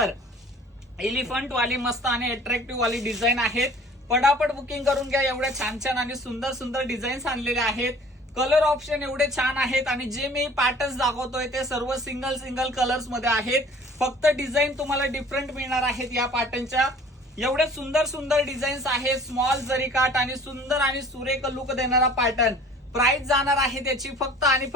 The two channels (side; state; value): both; normal; correlation 0.49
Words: एलिफंट वाली मस्त आणि अट्रॅक्टिव्ह वाली डिझाईन आहेत. पटापट बुकिंग करून घ्या. एवढ्या छान छान आणि सुंदर सुंदर डिझाईन्स आणलेले आहेत. कलर ऑप्शन एवढे छान आहेत. आणि जे मी पॅटर्न्स दाखवतोय ते सर्व सिंगल सिंगल कलर्स मध्ये आहेत. फक्त डिझाईन तुम्हाला डिफरंट मिळणार आहेत या पॅटर्नच्या. एवढे सुंदर सुंदर डिझाईन्स आहेत. स्मॉल जरीकाठ आणि सुंदर आणि सुरेख लुक देणारा पॅटर्न. प्राइस जाणार आहे त्याची फक्त आणि